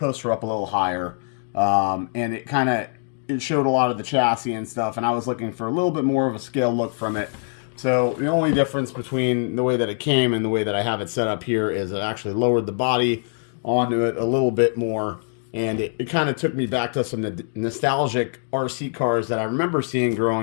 are up a little higher, and it showed a lot of the chassis and stuff, and I was looking for a little bit more of a scale look from it. So the only difference between the way that it came and the way that I have it set up here is it actually lowered the body onto it a little bit more, and it kind of took me back to some nostalgic RC cars that I remember seeing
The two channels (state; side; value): silent; right; 63 dB below the other